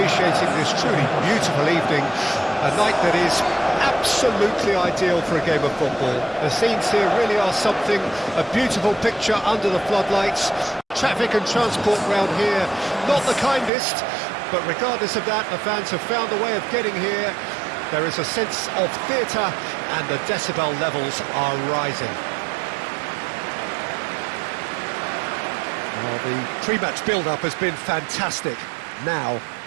this truly beautiful evening, a night that is absolutely ideal for a game of football. The scenes here really are something, a beautiful picture under the floodlights. Traffic and transport round here, not the kindest, but regardless of that, the fans have found a way of getting here. There is a sense of theatre and the decibel levels are rising. Well, the pre-match build-up has been fantastic. Now,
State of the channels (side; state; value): left; drops out; at 13.7 s